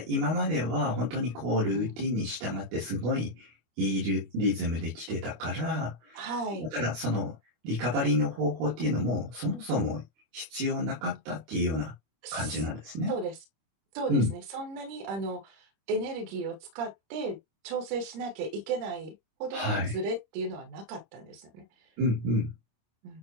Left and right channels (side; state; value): left; late; 25 ms